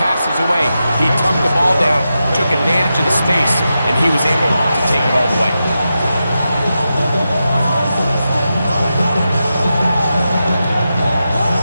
away. He tucked the ball down, took advantage of the space, and he was able to take it all the way.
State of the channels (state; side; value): inverted; both; correlation -0.89